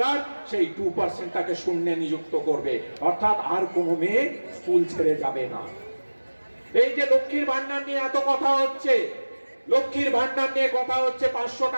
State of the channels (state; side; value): inverted; both; correlation -1.00